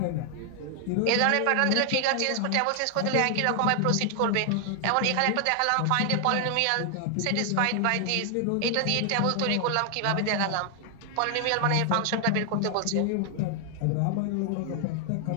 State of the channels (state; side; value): different; both; correlation 0.00